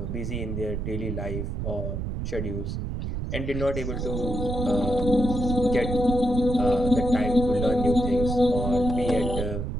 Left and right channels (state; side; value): noise; right; rumble, 3 dB below the sound